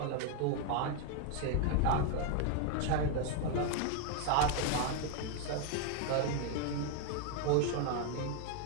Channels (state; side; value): different; both; correlation 0.01